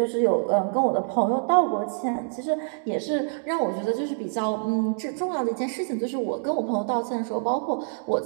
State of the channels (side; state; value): left; silent; digital silence